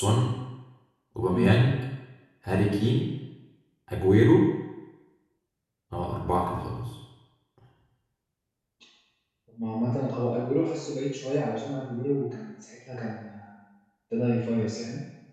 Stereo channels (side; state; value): both; identical; correlation 1.00